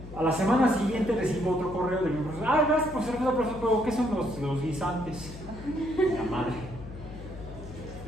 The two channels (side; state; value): left; noise; hum, 14 dB below the sound